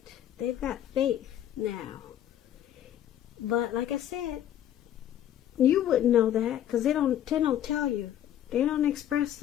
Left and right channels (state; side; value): quieter; right; 11.2 dB